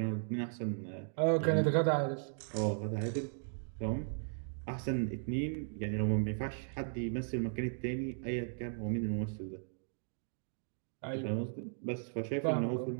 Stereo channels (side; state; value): left; silent; digital silence